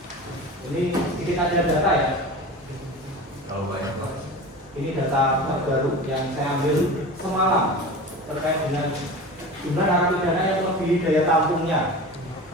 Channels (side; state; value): both; normal; correlation 0.33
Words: Ini sedikit ada data ya. Kalau banyak Pak. Ini data terbaru yang saya ambil semalam terkait dengan jumlah narapidana yang melebihi daya tampungnya.